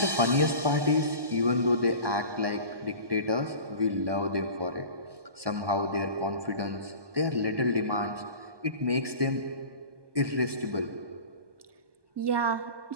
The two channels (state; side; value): late; left; 1.2 ms